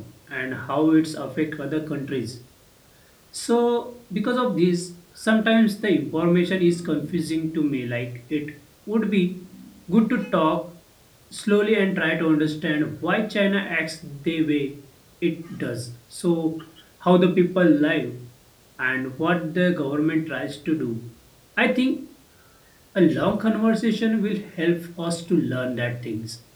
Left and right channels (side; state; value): both; identical; correlation 1.00